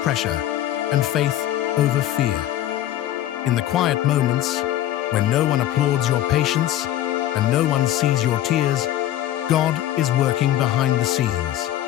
and faith over fear. In the quiet moments, when no one applauds your patience and no one sees your tears, God is working behind the scenes.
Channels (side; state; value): right; quieter; 12.9 dB